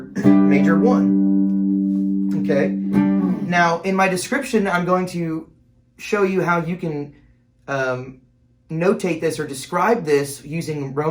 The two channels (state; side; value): identical; both; correlation 1.00